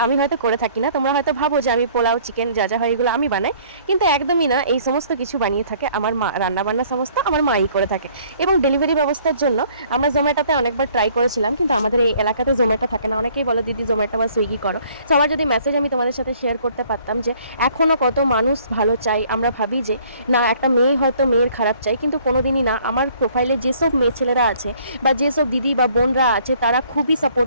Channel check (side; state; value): both; inverted; correlation -0.58